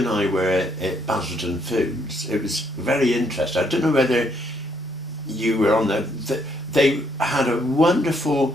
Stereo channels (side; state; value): both; normal; correlation 0.71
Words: I were at Basildon Foods, it was very interesting. I don't know whether you were on there. They had a